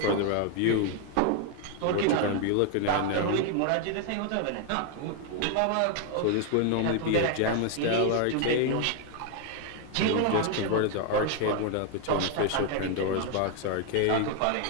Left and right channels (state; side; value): different; both; correlation 0.00